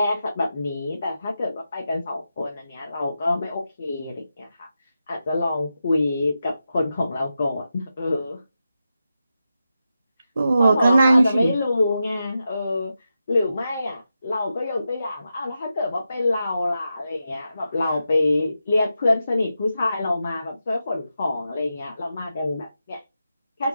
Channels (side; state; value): both; inverted; correlation -0.89